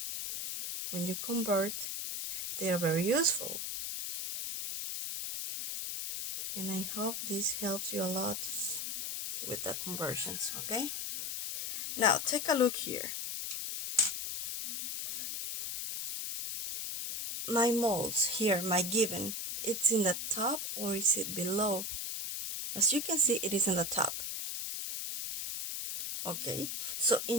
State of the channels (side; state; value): left; noise; hiss, 4 dB below the sound